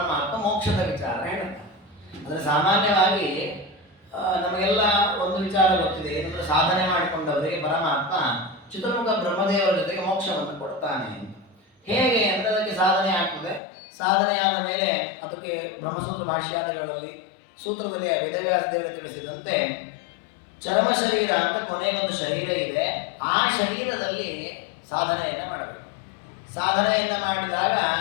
ಮೋಕ್ಷದ ವಿಚಾರ ಹೇಳ್ತಾರೆ. ಅಂದರೆ ಸಾಮಾನ್ಯವಾಗಿ ನಮಗೆಲ್ಲ ಒಂದು ವಿಚಾರ ಗೊತ್ತಿದೆ, ಏನಂದ್ರೆ ಸಾಧನೆ ಮಾಡಿಕೊಂಡವರಿಗೆ ಪರಮಾತ್ಮ ಚತುರ್ಮುಖ ಬ್ರಹ್ಮದೇವರ ಜೊತೆಗೆ ಮೋಕ್ಷವನ್ನು ಕೊಡ್ತಾನೆ ಅಂತ. ಹೇಗೆ ಅಂದರೆ ಅದಕ್ಕೆ ಸಾಧನೆ ಆಗ್ತದೆ. ಸಾಧನೆ ಆದ ಮೇಲೆ ಅದಕ್ಕೆ ಬ್ರಹ್ಮಸೂತ್ರ ಭಾಷ್ಯಾದಿಗಳಲ್ಲಿ ಸೂತ್ರದಲ್ಲಿ ವೇದವ್ಯಾಸ ದೇವರು ತಿಳಿಸಿದಂತೆ ಚರ್ಮ ಶರೀರ ಅಂತ ಕೊನೆಗೊಂದು ಶರೀರ ಇದೆ. ಆ ಶರೀರದಲ್ಲಿ ಸಾಧನೆಯನ್ನು ಮಾಡಬೇಕು. ಸಾಧನೆಯನ್ನು ಮಾಡಿದಾಗ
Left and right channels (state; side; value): drops out; right; at 13.6 s